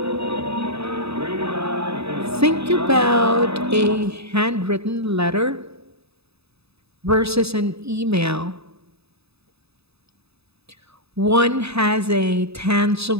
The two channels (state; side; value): late; left; 0.79 ms